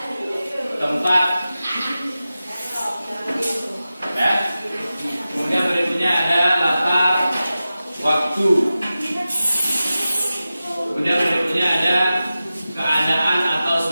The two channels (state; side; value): inverted; both; correlation -0.94